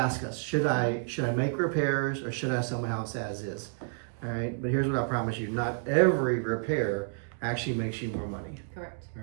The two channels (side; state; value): left; silent; digital silence